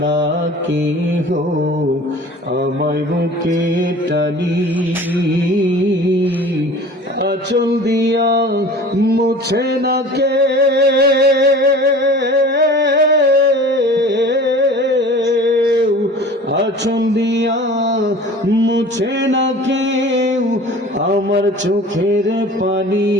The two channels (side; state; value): both; normal; correlation 0.42